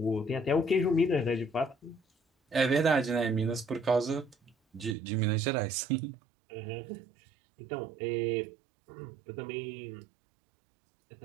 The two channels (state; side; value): drops out; left; at 5.0 s